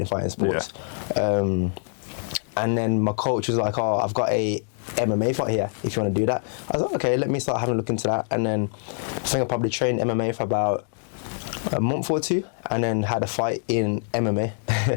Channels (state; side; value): silent; right; digital silence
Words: sports. Yeah. And then my coach was like, oh, I've got a MMA fight here, if you want to do that. I was like, okay, let me start having a look into that. And then I think I probably trained MMA for about a month or two, and then had a fight in MMA.